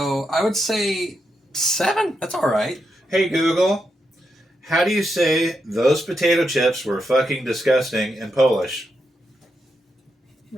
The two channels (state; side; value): normal; both; correlation 0.84